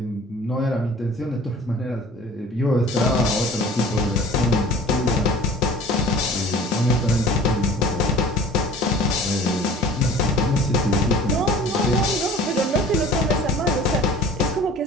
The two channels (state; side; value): normal; both; correlation 0.44